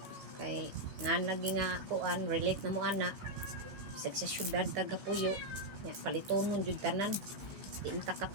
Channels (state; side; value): late; left; 15 ms